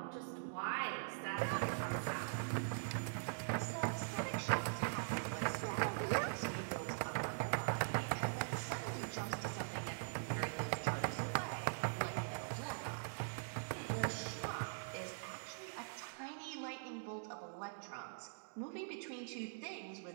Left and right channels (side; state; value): left; silent; digital silence